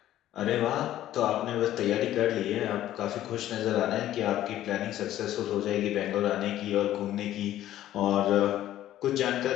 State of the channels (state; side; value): quieter; right; 13.0 dB